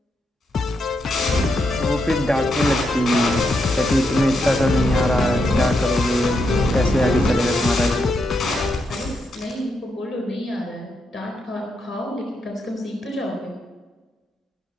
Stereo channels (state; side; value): normal; both; correlation 0.82